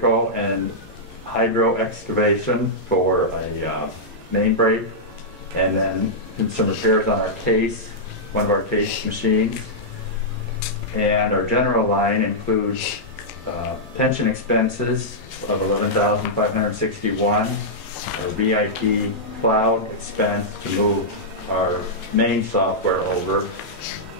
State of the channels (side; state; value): both; normal; correlation -0.10